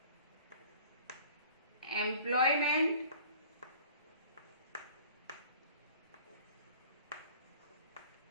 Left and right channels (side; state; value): both; inverted; correlation -0.48